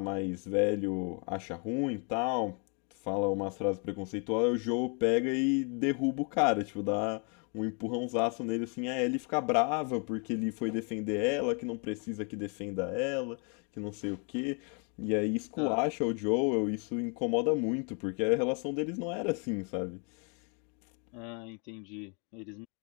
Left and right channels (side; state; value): right; quieter; 37.3 dB